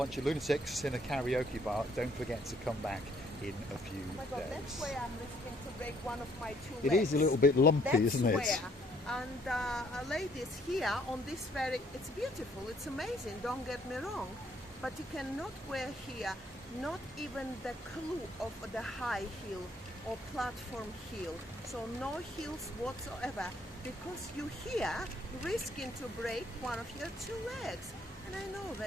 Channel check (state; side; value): normal; both; correlation 0.65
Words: of lunatics in a karaoke bar, don't forget to come back in a few days. Oh my God, that's where I'm risking to break one of my two legs. It is a little bit lumpy, that's isn't it? Where. And ladies, here on this ferry, it's beautiful, it's amazing, don't get me wrong, but you cannot wear here not even the clue of the high heel or platform heel, so no heels whatsoever, because you here risking to break one of your two legs. And I know